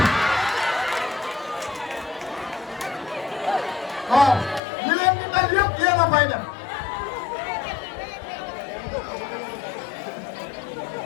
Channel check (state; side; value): drops out; right; at 4.6 s